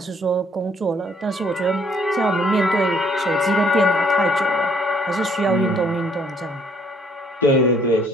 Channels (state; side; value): normal; both; correlation 0.64